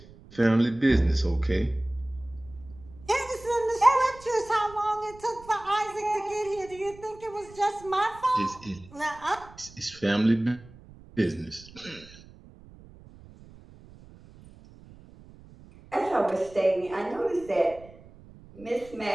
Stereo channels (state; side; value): noise; right; rumble, 21 dB below the sound